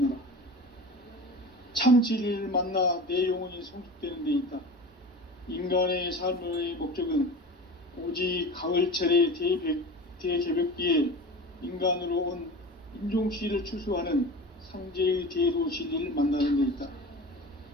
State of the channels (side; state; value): both; normal; correlation 0.34